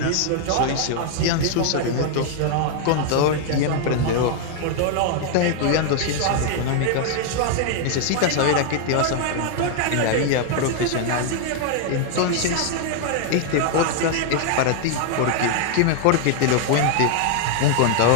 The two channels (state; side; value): different; both; correlation 0.00